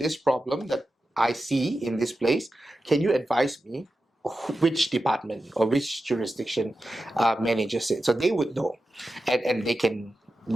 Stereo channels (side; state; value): both; normal; correlation 0.91